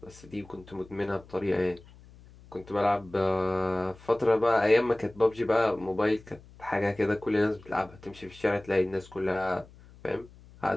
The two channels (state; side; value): noise; left; hum, 23 dB below the sound